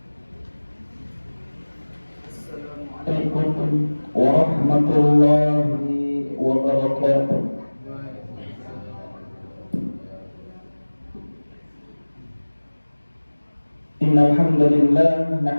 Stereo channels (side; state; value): both; inverted; correlation -1.00